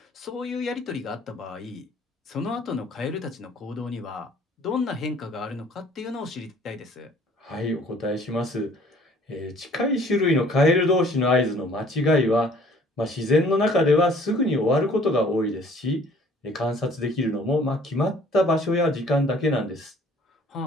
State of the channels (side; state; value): both; normal; correlation 0.55